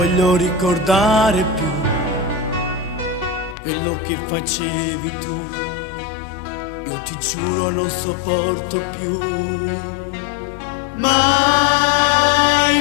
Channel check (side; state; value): right; drops out; at 3.6 s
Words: ricordare più, quello che facevi tu. Io ti giuro non sopporto più. Mai,